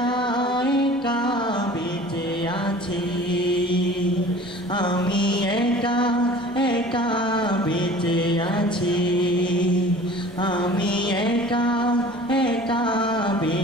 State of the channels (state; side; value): normal; both; correlation 0.44